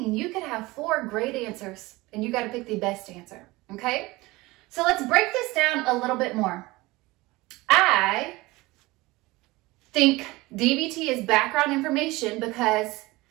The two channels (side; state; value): left; quieter; 21.1 dB